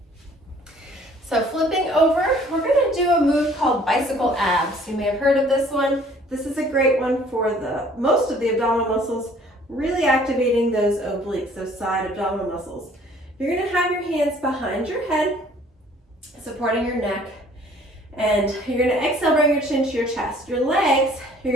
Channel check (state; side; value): normal; both; correlation 0.56